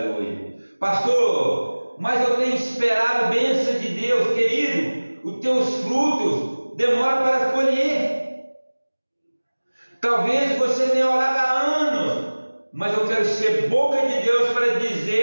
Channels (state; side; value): inverted; both; correlation -1.00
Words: Pastor, mas eu tenho esperado bênção de Deus, querido. Os teus frutos demoram para colher. Talvez você tenha orado há anos, mas eu quero ser boca de Deus para